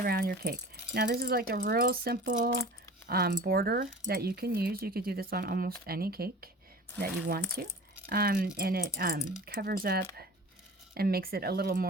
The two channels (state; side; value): normal; both; correlation 0.39